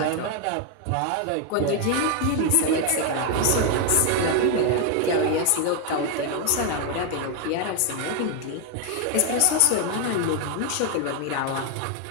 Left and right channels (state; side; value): different; both; correlation 0.01